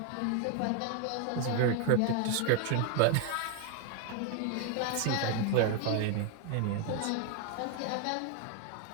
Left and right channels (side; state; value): both; different; correlation 0.01